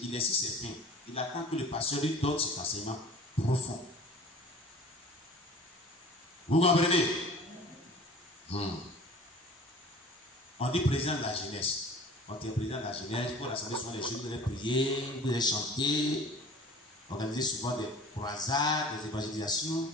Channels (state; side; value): normal; both; correlation 0.44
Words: Il est sur ses fins. Il attend que le pasteur lui donne cet enseignement profond. Vous comprenez? On dit président de la jeunesse. Quand tu es président de la jeunesse, pour l'assemblée, souvent les jeunes, vous allez prier, vous allez chanter, organiser souvent des croisades, des évangélisations,